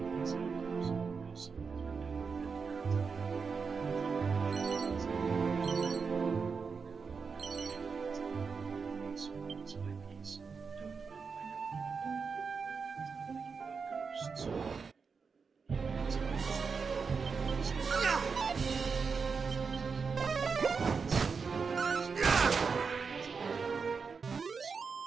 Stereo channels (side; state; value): left; quieter; 5.3 dB